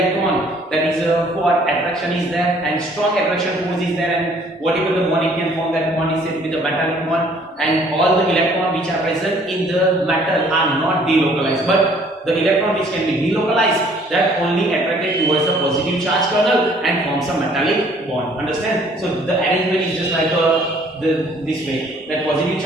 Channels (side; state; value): both; normal; correlation 0.58